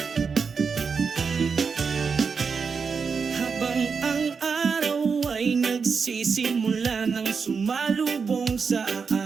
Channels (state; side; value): quieter; left; 5.5 dB